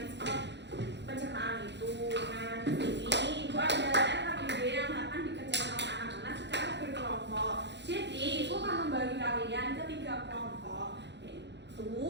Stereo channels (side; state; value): left; late; 0.51 ms